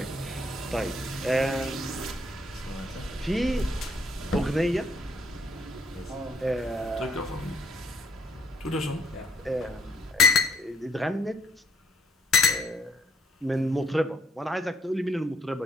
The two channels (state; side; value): normal; both; correlation 0.64